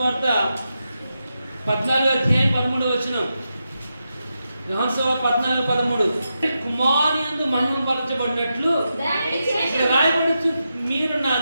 14వ అధ్యాయం 13వ వచనం. యోహాను సువార్త 14:13. కుమారుని యందు మహిమపరచబడినట్లు ఇక్కడ రాయబడుచు, మీరు నా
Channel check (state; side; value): inverted; both; correlation -0.87